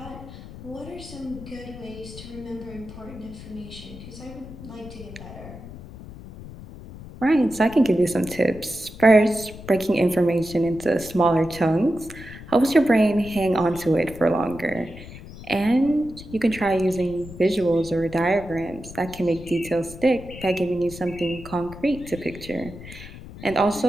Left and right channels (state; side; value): noise; left; rumble, 15 dB below the sound